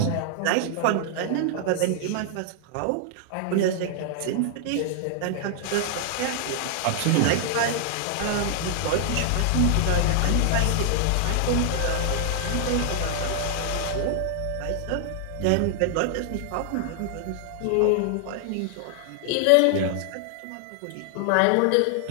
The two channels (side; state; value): both; different; correlation 0.00